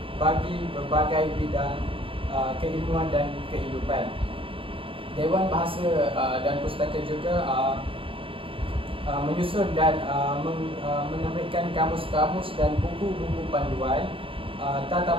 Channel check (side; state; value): left; late; 0.26 ms